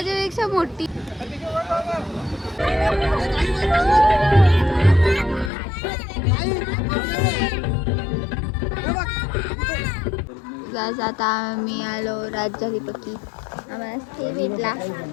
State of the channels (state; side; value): drops out; right; at 5.5 s